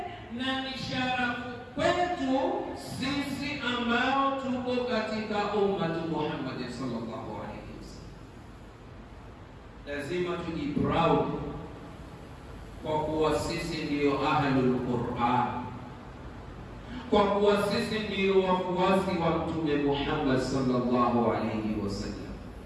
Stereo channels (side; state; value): both; identical; correlation 1.00